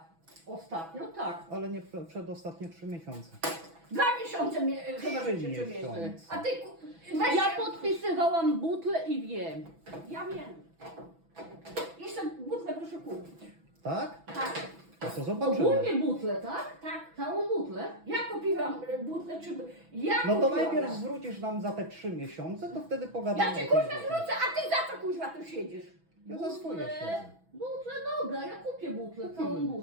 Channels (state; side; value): late; left; 6.1 ms